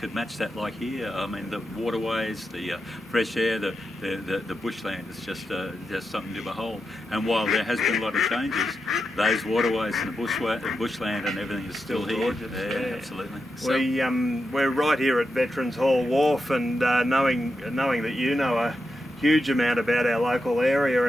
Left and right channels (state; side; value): normal; both; correlation 0.88